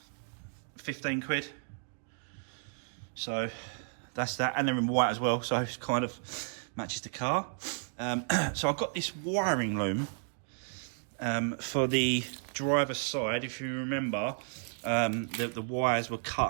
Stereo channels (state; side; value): silent; left; digital silence